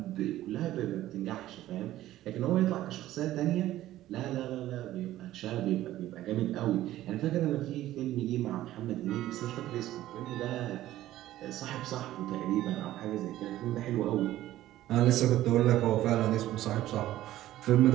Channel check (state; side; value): quieter; left; 14.4 dB